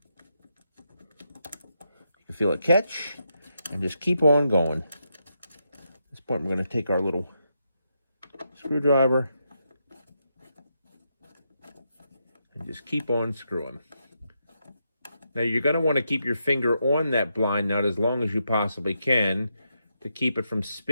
can feel it catch, and just keep on going. At this point, we're going to take our little screwdriver and just keep on screwing. Now you're going to want to keep your finger on that blind nut as long as you possibly can to keep it from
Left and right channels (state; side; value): inverted; both; correlation -0.82